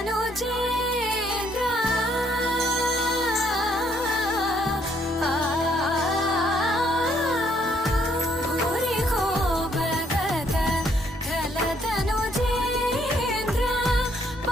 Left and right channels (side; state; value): both; normal; correlation 0.69